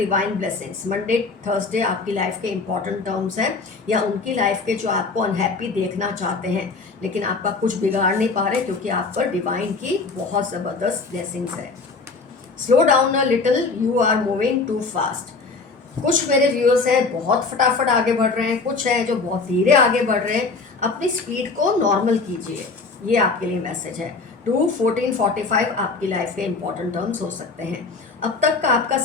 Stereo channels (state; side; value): quieter; right; 4.2 dB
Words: blessings. Monday Thursday आपकी लाइफ के इंपॉर्टेंट टर्म्स हैं, या उनकी लाइफ के जो आपको अनहैप्पी देखना चाहते हैं लेकिन आपका कुछ बिगाड़ नहीं पा रहे क्योंकि आप पर डिवाइन की बहुत ज़बरदस्त ब्लेसिंग्स है। Slow down a little, you are moving too fast. कुछ मेरे व्यूअर्स हैं बहुत फटाफट आगे बढ़ रहे हैं, कुछ हैं जो बहुत धीरे आगे बढ़ रहे हैं। अपनी स्पीड को नॉर्मल कीजिए, ये आपके लिए मैसेज है। 2/14/45 आपकी लाइफ के इंपॉर्टेंट टर्म्स हो सकते हैं। अब तक का आपका